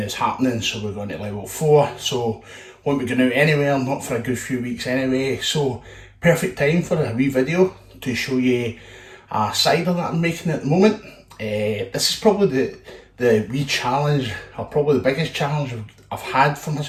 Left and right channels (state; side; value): identical; both; correlation 1.00